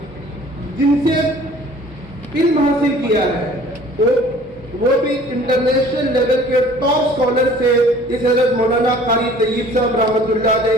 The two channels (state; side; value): normal; both; correlation 0.51